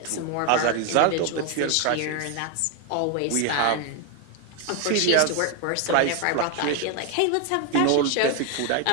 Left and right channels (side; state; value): both; different; correlation 0.01